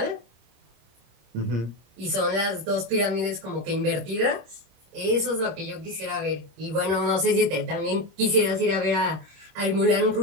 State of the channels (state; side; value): late; left; 26 ms